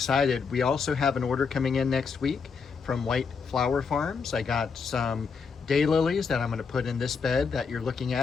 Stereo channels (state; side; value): quieter; right; 5.5 dB